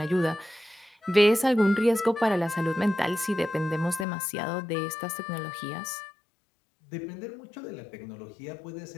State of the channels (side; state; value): right; drops out; at 4.0 s